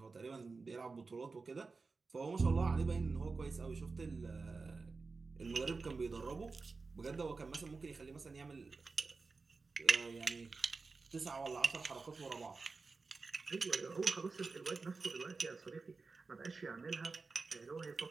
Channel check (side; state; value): left; quieter; 4.2 dB